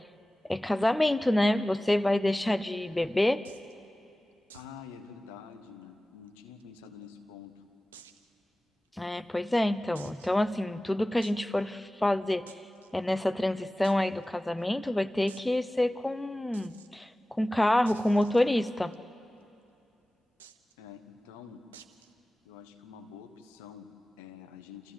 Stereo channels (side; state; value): both; normal; correlation 0.97